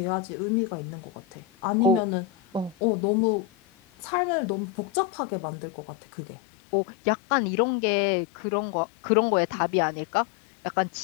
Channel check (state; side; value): drops out; right; at 5.0 s